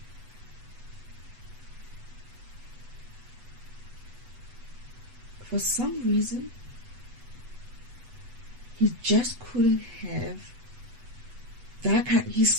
for some reason, he just couldn't have that kind.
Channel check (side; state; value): left; late; 8.1 ms